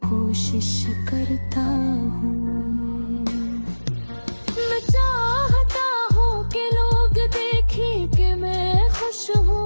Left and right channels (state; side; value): inverted; both; correlation -1.00